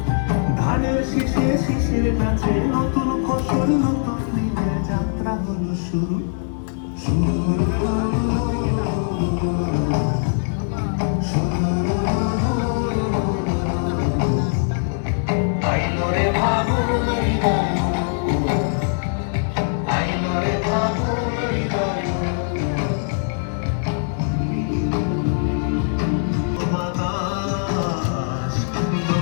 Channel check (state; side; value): silent; right; digital silence